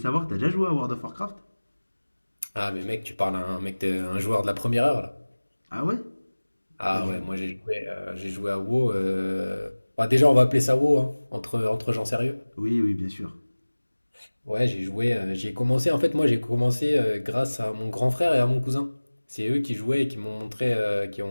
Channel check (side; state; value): both; inverted; correlation -1.00